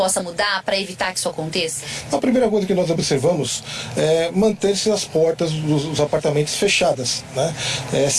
mudar para evitar que isso aconteça? A primeira coisa que nós observamos é manter-se as portas dos apartamentos fechadas, né?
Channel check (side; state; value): both; identical; correlation 1.00